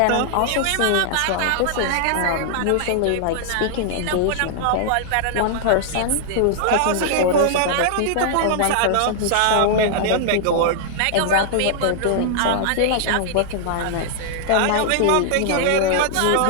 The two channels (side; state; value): both; different; correlation -0.01